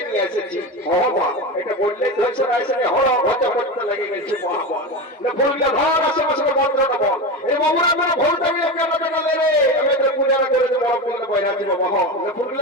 নিয়ে এসেছি এটা বললে ধরছে না এসে হড় হতে করতে লেগে গেছে না ফুলটা ধর আশেপাশে মন্ত্রটা বল এই বাবুরা আমরা ভুলটা গিয়ে কেমন লে আমাদের পূজাটা করে দেবো বড় বইরা দিব বাবা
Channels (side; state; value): both; normal; correlation 0.22